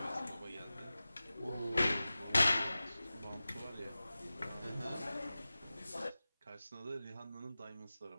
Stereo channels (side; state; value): both; inverted; correlation -0.96